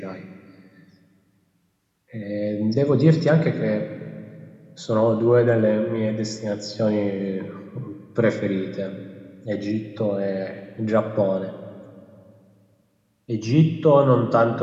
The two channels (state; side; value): identical; both; correlation 1.00